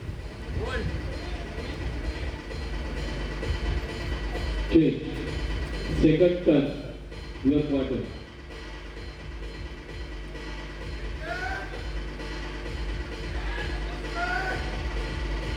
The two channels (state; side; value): identical; both; correlation 1.00